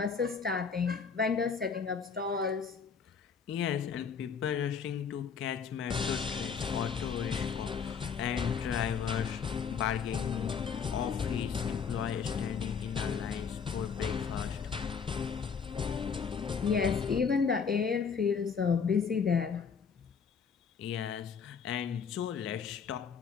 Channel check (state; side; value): quieter; right; 6.3 dB